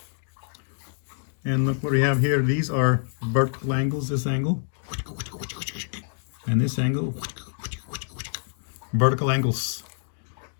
And look what we have here. These are vertical angles, this angle. And this angle. Vertical angles.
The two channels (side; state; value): right; silent; digital silence